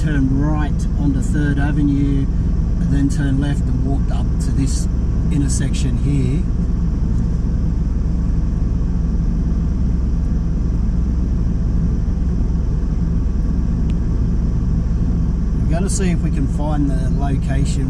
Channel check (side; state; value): both; identical; correlation 1.00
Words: right onto 3rd Avenue, and then turned left and walked up to this intersection here. We're going to see if we can find the